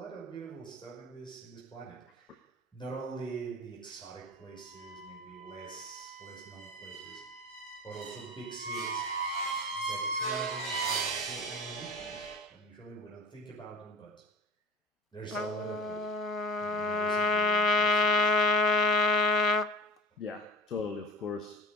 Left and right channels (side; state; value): both; normal; correlation 0.36